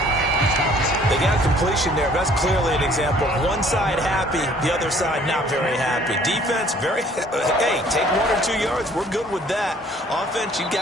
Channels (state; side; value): normal; both; correlation 0.57